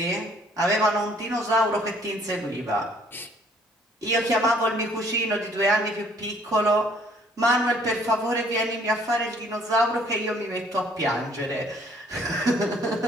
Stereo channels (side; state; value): both; normal; correlation 0.60